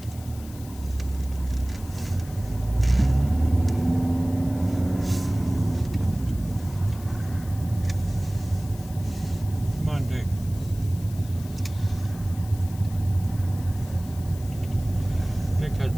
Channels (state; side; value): noise; left; hiss, 19 dB below the sound